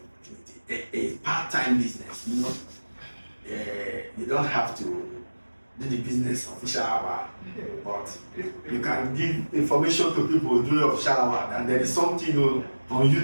opportunity. A part-time business, you don't have to do the business official hour, but you can give information to people during official hour, and there is something on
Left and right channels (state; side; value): inverted; both; correlation -1.00